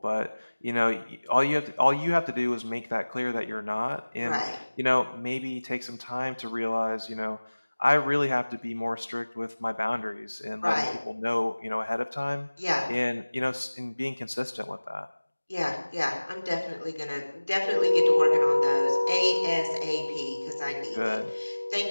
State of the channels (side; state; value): both; inverted; correlation -1.00